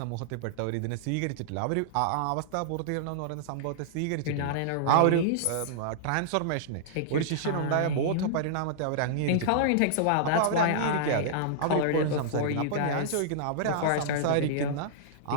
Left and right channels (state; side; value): different; both; correlation -0.02